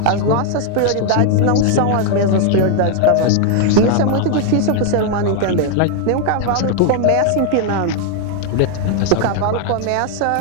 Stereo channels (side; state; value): both; different; correlation 0.00